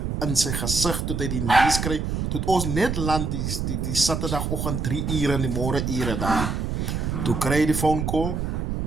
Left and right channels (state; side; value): noise; right; rumble, 2 dB below the sound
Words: in zijn gezicht toen hij die nieuws kreeg. Toen ons net land die zaterdagochtend 3 uur in de morgenuren daar. Toen kreeg hij die phone call